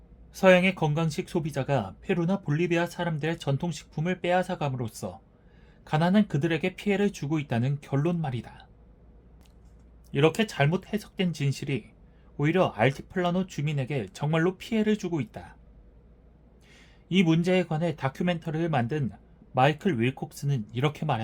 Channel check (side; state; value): both; identical; correlation 1.00